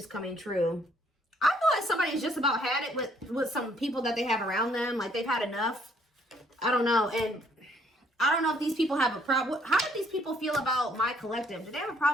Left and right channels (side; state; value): both; normal; correlation 0.65